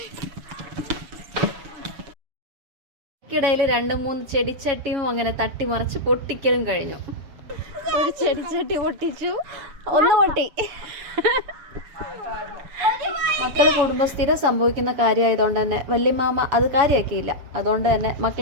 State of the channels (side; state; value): left; late; 7.3 ms